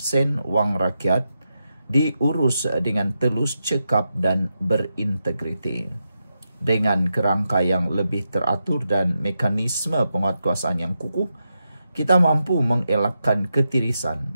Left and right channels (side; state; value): both; inverted; correlation -0.87